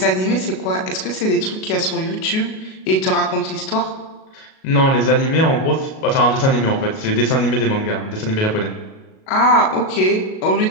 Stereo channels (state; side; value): late; right; 37 ms